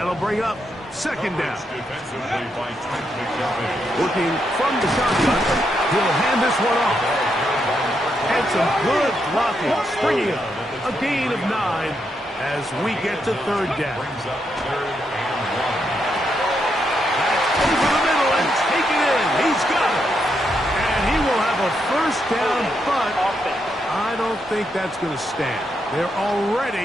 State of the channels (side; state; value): both; normal; correlation 0.80